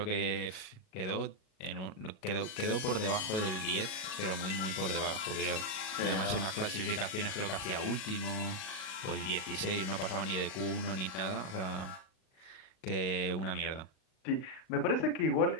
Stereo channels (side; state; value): right; late; 37 ms